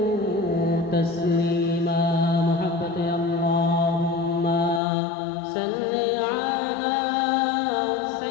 تسليما محبة اللهم صل على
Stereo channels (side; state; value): right; drops out; at 4.8 s